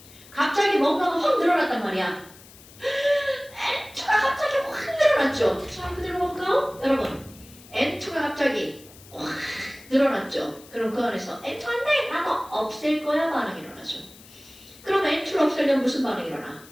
갑자기 뭔가가 확 늘어났단 말이야. N2가 갑자기 확 늘어났죠? 자, 그대로 볼까요? 여러분, N2가 갑자기 확 늘어났죠? 그럼 그 안에서 N2 안 돼! 나도 없앨 거야 반응이 일어나죠. 그럼 N2를 없애려면 무슨 반응이 일어나?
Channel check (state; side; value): noise; left; hiss, 22 dB below the sound